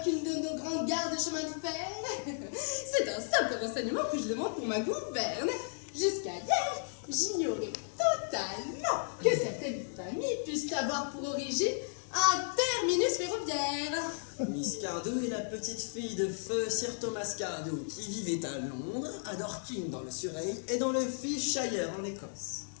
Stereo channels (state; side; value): silent; right; digital silence